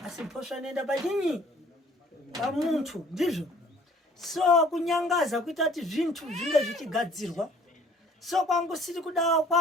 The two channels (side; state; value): both; normal; correlation 0.56